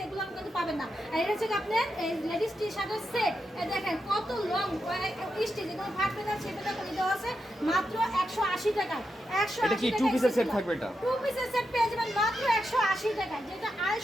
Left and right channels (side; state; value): both; normal; correlation 0.86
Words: এগুলো কিন্তু পাবেন না। আর এটা হচ্ছে আপনার লেডিস টি শার্টের সেট। দেখেন কত লং স্টিচ, এগুলো ফাটবে না ছেপে করে দেওয়া আছে মাত্র 180 টাকায়। 180 এটা কি টু পিসের সেট থাকবে? এটা টু পিসের সেট পেয়ে যাবেন মাত্র 180 টাকায়, যেটা